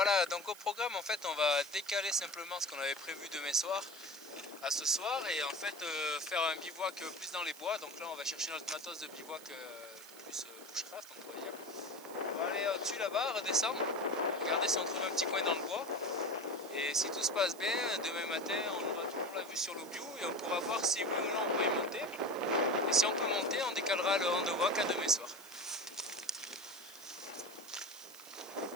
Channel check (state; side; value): noise; right; hiss, 18 dB below the sound